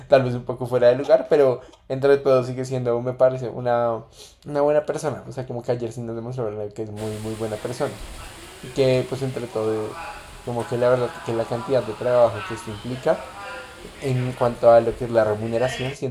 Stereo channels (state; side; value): identical; both; correlation 1.00